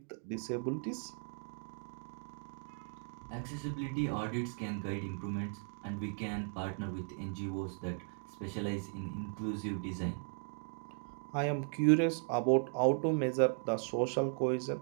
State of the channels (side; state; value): left; silent; 53 dB below the other